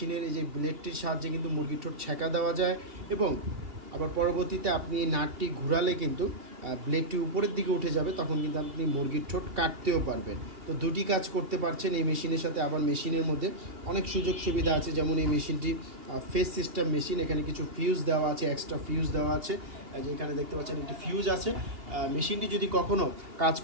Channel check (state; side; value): late; left; 2.8 ms